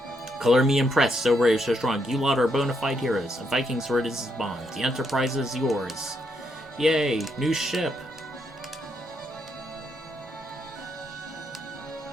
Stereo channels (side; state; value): both; normal; correlation 0.77